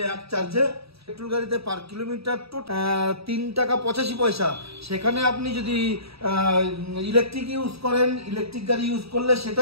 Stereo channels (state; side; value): late; left; 0.77 ms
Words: এক চার্জে। পেট্রোল গাড়িতে পার কিলোমিটার 3 টাকা 85 পয়সা। সেখানে আপনি যদি ইলেকট্রিক ইউজ করেন, ইলেকট্রিক গাড়ি ইউজ করলে সেটা